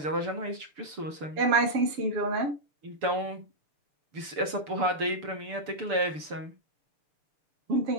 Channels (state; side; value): late; left; 6.8 ms